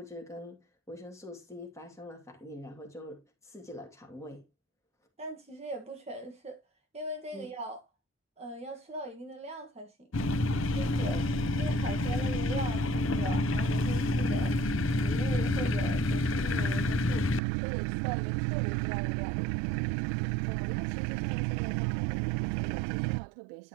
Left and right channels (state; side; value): drops out; left; at 17.4 s